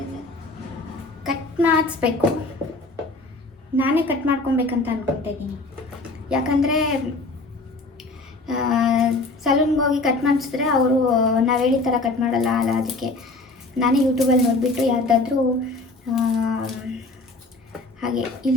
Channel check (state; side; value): quieter; right; 3.2 dB